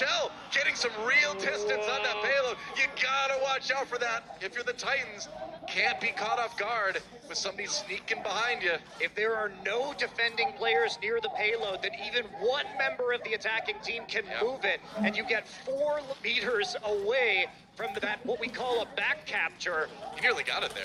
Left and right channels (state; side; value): identical; both; correlation 1.00